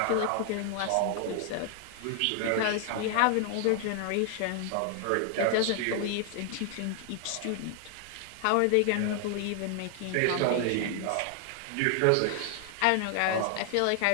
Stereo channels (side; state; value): both; different; correlation 0.00